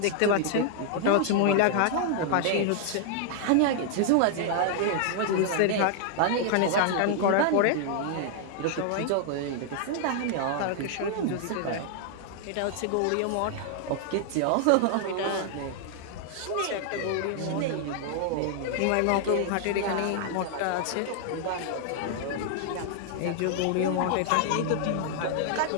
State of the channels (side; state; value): both; different; correlation 0.00